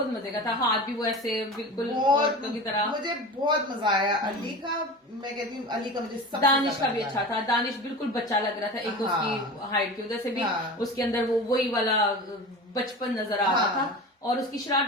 मजे का था, हाथ भी वो ऐसे बिल्कुल औरतों की तरह, मुझे बहुत मजा आया अली का। मैं कहती हूँ अली का मुझे दानिश का भी अच्छा था, दानिश बिल्कुल बच्चा लग रहा था, एक उसकी हाइट की वजह से भी उसके अंदर वो वही वाला बचपन नजर आ रहा था, और उसकी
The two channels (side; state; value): both; normal; correlation 0.32